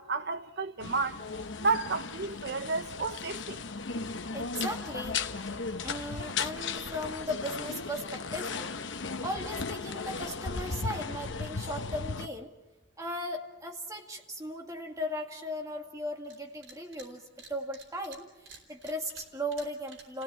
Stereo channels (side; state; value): both; normal; correlation 0.03